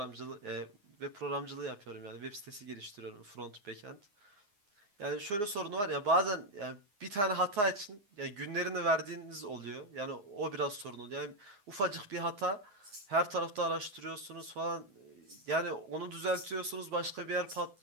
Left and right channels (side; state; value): left; late; 9.6 ms